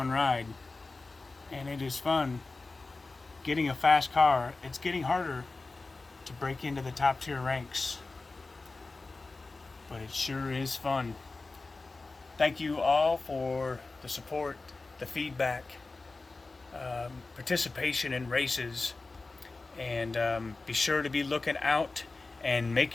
ride. And it is fun getting a fast car. It's getting harder to break into the top tier ranks. But it sure is fun. Thank you all for the support, the feedback, participation in races. And be sure to be looking out and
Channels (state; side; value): quieter; right; 3.6 dB